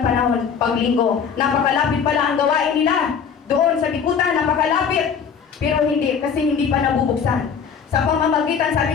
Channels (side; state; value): right; quieter; 6.8 dB